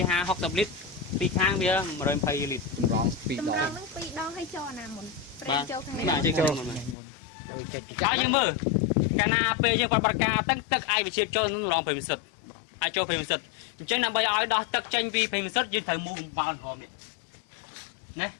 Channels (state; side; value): drops out; right; at 7.0 s